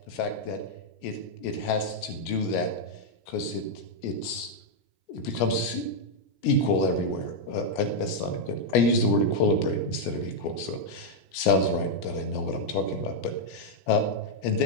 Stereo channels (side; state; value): right; late; 17 ms